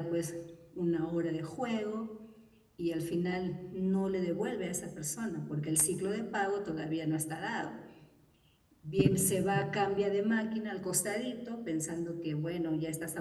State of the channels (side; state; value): both; identical; correlation 1.00